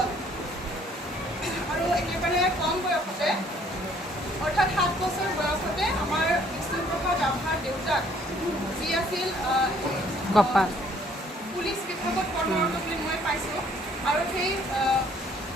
আৰু একেবাৰে কম বয়সতে অৰ্থাৎ 7 বছৰ বয়সতে আমাৰ বিষ্ণুপ্ৰসাদ ৰাভাৰ দেউতাক যি আছিল পুলিচ বিভাগত কৰ্মৰত বুলি মই পাইছোঁ আৰু সেই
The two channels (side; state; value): both; normal; correlation 0.61